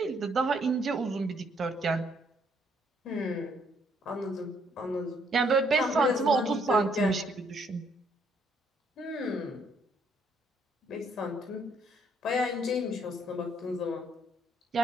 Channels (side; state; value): both; normal; correlation 0.68